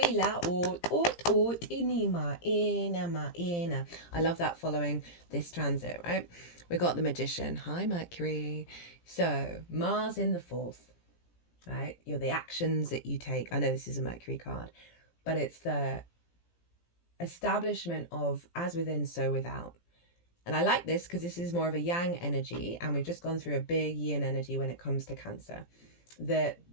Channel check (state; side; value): late; right; 17 ms